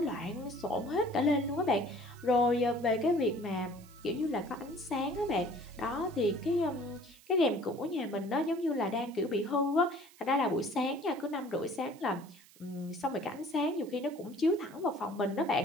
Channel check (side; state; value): right; noise; hiss, 25 dB below the sound